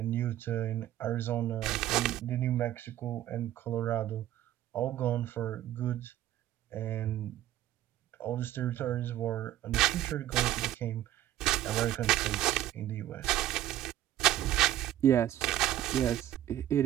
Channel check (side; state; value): left; quieter; 13.1 dB